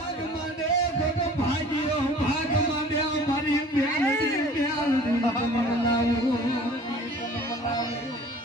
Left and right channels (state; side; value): normal; both; correlation 0.47